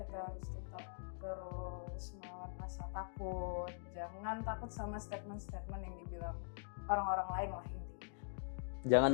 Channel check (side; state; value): right; silent; digital silence